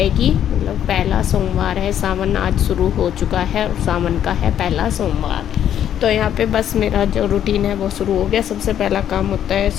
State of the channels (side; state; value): right; quieter; 10.1 dB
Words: की, मतलब पहला सोमवार है। सावन आज शुरू हो चुका है और सावन का है पहला सोमवार। तो यहाँ पे बस मेरा जो रूटीन है वो शुरू हो गया। सबसे पहला काम होता है